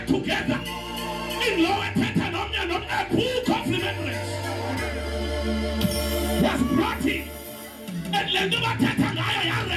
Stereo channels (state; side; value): identical; both; correlation 1.00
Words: together in lower Tetanomian, a book of remembrance was brought in, and Lenduba Tetangaya